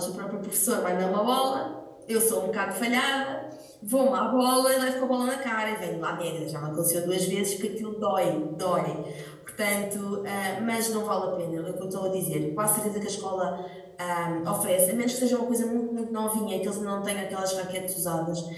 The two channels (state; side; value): identical; both; correlation 1.00